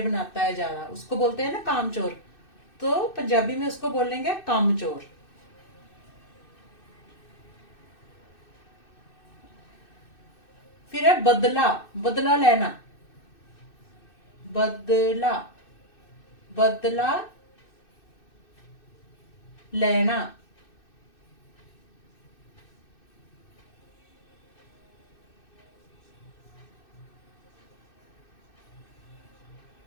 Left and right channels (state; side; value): late; right; 2.6 ms